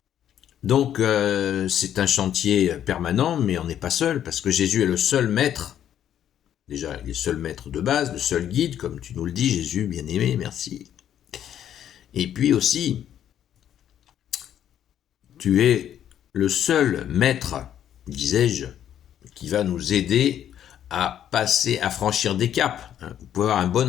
Donc c'est un chantier permanent, mais on n'est pas seul, parce que Jésus est le seul maître. Déjà, il est le seul maître de base, le seul guide, comme tu nous le dis, Jésus, bien-aimé, merci. Et puis aussi, tu es le seul maître, disais-je, qui va nous aider à franchir des caps. Vous pouvez avoir un bon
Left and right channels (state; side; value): quieter; right; 10.3 dB